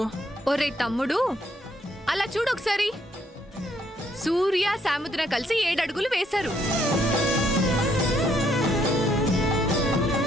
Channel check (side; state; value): both; normal; correlation 0.70